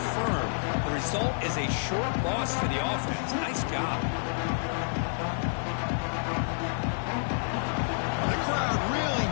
firm. The result is a short loss for the offense. Nice job. The crowd really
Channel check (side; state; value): right; silent; 59 dB below the other